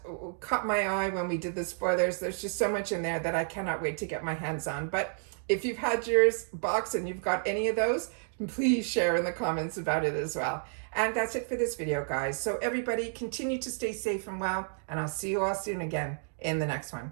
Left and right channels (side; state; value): left; silent; digital silence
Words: caught my eye when we did the spoilers. There's just so much in there that I cannot wait to get my hands on. But if you've had yours box and you've got any of those, please share in the comments about it as well. And that's it for this video, guys. So everybody, continue to stay safe and well, and I'll see you all soon again in the next